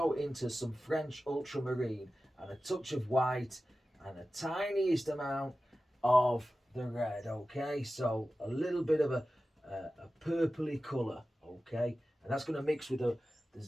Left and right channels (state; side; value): normal; both; correlation 0.95